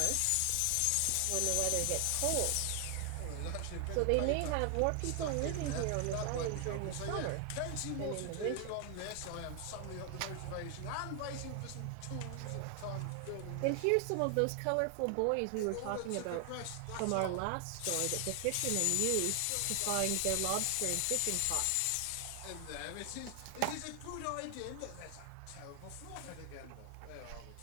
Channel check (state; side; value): different; both; correlation 0.00